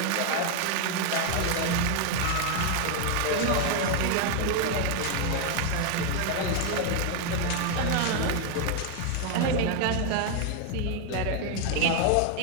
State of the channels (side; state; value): both; different; correlation 0.01